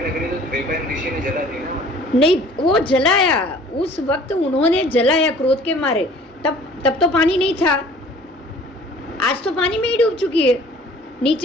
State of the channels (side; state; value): both; normal; correlation 0.50